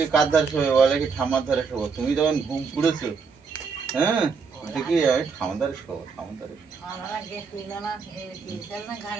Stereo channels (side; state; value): left; quieter; 5.3 dB